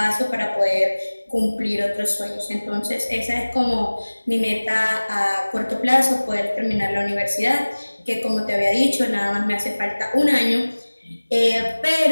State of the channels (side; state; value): both; inverted; correlation -1.00